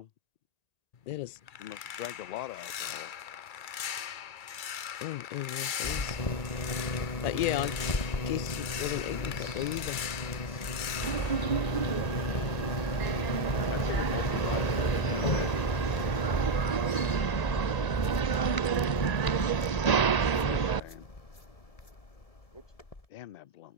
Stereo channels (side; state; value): right; late; 2.3 ms